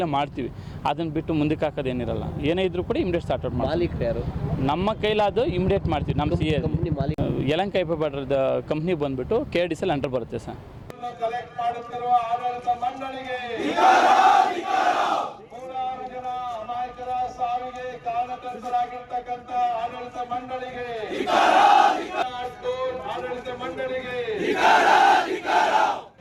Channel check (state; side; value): identical; both; correlation 1.00